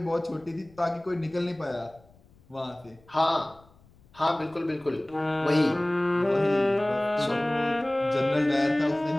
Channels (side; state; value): left; noise; rumble, 28 dB below the sound